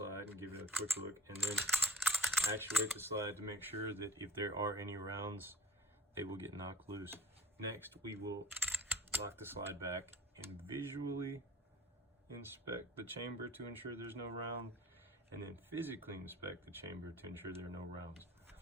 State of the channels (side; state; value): both; normal; correlation 0.44